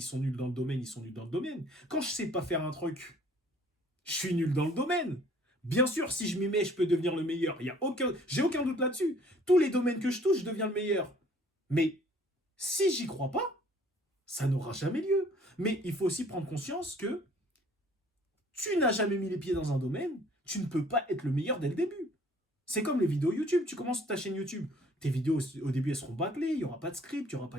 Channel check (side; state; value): both; normal; correlation 0.56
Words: sont nuls dans le domaine, ils sont nuls dans le domaine. Quand je sais pas faire un truc, je suis nul dans le domaine. Bien sûr, si je m'y mets, je peux devenir le meilleur. J'ai aucun doute là-dessus. Tous les domaines que je touche, je deviens le meilleur. Mais si j'y crois pas, ça n'aura jamais lieu. Mais il faut aussi prendre conscience que tu n'as jamais mis les pieds dans un domaine, tu ne peux pas être le meilleur dès le début. C'est comme les vidéos YouTube. Tu commences ta chaîne YouTube, Tes vidéos, au début, elles seront bâclées, il n'y aura pas de script, il n'y aura pas